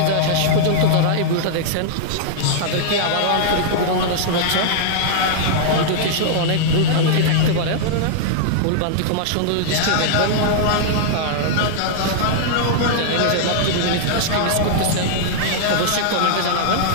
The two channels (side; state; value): both; different; correlation -0.01